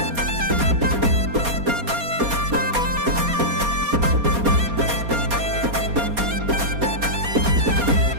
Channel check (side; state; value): left; late; 4.2 ms